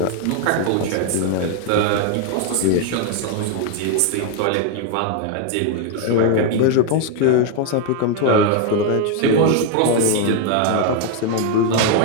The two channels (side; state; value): both; different; correlation 0.01